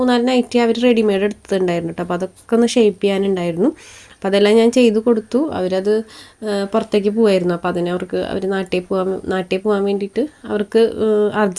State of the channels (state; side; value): identical; both; correlation 1.00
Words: നൈറ്റി അവർ റെഡിമെയ്ഡ് എടുത്തിട്ടുണ്ടായിരുന്നു കേട്ടോ. അപ്പോൾ അതൊക്കെ ഒന്ന് ഷേപ്പ് ചെയ്യാനുണ്ടായിരുന്നു. അപ്പോൾ അതെല്ലാം ഞാൻ ചെയ്ത് കൊടുത്തു. അവരത് പുറത്തേക്ക് പോകായിരുന്നു. അപ്പോൾ അവർ നാട്ടിൽ പോകാൻ വേണ്ടിയിട്ട് അവർക്ക്